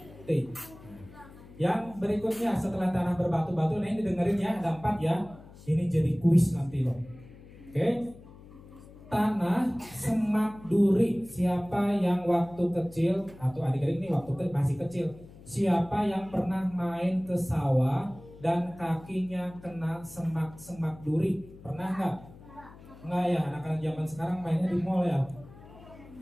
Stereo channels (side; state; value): left; noise; hum, 20 dB below the sound